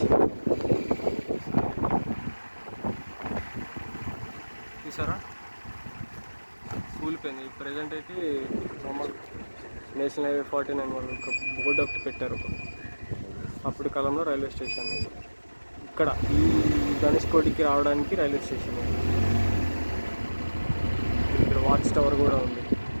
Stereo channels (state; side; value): inverted; both; correlation -1.00